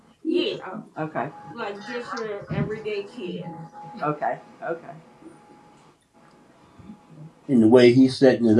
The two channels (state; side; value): identical; both; correlation 1.00